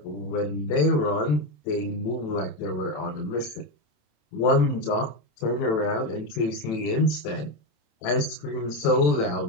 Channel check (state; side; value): late; right; 27 ms